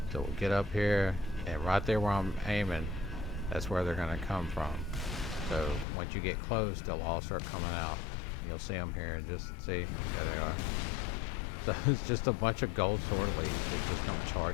So we'll get up here, and right there where I'm aiming, that's where they're going to come from. So once you get close, they'll all start coming out. You'll see them here, and just see, there they are. So it's just a bunch of gold sword elites that just come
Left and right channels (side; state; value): right; drops out; at 5.9 s